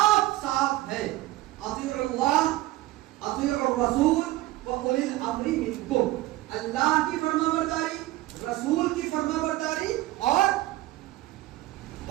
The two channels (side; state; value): left; quieter; 17.3 dB